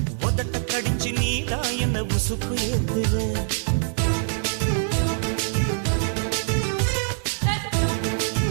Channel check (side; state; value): left; silent; digital silence